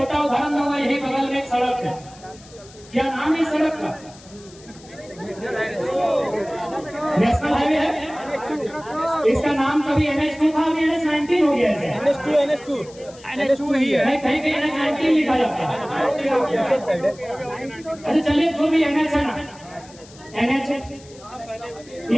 उदाहरण दूंगा। यही बगल में एक सड़क है, क्या नाम है इस सड़क का? नेशनल हाईवे है। इसका नाम कभी NH2 था, अभी NH19 हो गया है। NH2 ही है, कहीं कहीं NH19 लिखा जाता है। अच्छा चलिए, जो भी NH है ना, NH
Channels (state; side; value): noise; left; hiss, 23 dB below the sound